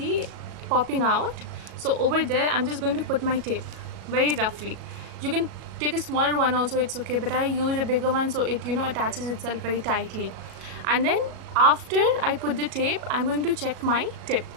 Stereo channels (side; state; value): left; late; 37 ms